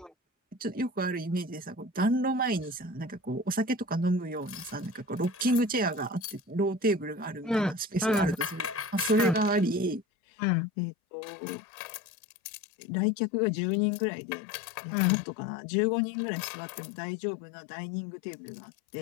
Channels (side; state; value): right; drops out; at 10.1 s